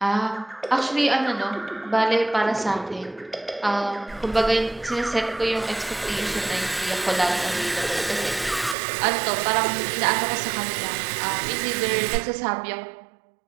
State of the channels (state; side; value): drops out; left; at 8.8 s